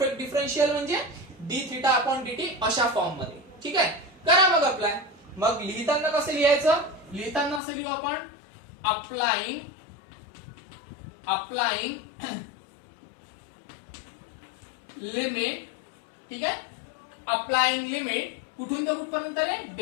डिफरन्शियल म्हणजे डी थिटा अपॉन dt अशा फॉर्म मध्ये, ठीक आहे. करा मग अप्लाय. मग लिहिताना कसं लिहायचं? लिहिताना असं लिहू आपण अप्लाइंग लिमिट, ठीक आहे. अप्लाइंग लिमिट कुठून ते कुठपर्यंत रे?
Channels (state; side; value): drops out; right; at 7.6 s